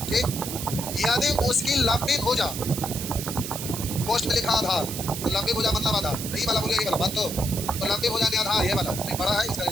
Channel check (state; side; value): noise; right; hiss, 7 dB below the sound